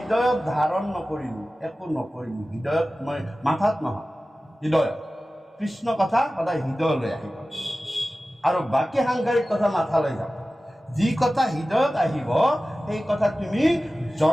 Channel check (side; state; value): both; normal; correlation 0.96